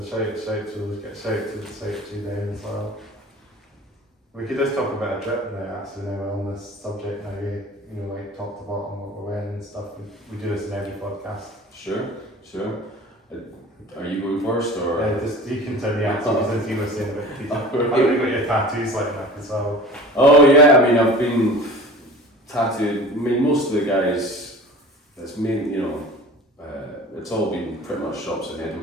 shout to them as well. We could just talk about a drip now, actually, now on this subject now, like top to bottom, what we're wearing and stuff. We do this in every podcast. Sure. Are you going first, or? Just you can tell me actually, since you were saying about t-shirt. I know you got your tattoos like that as well. Oh yeah, I mean, I've been tattooed. I mean, most of the guys, it's mainly, it's all been pretty much shops in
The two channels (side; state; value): both; normal; correlation 0.39